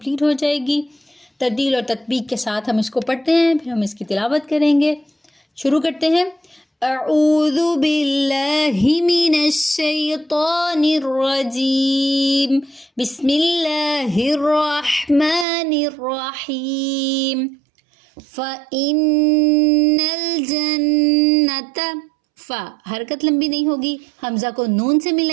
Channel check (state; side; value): drops out; left; at 15.5 s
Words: ہو جائے گی۔ ترتیل اور تطبیق کے ساتھ ہم اس کو پڑھتے ہیں، پھر ہم اس کی تلاوت کریں گے۔ شروع کرتے ہیں۔ اعوذ باللہ من الشیطان الرجیم، بسم اللہ الرحمن الرحیم۔ فَإِنَّ الْجَنَّةَ، فا حرکت لمبی نہیں ہوگی، حمزہ کو نون سے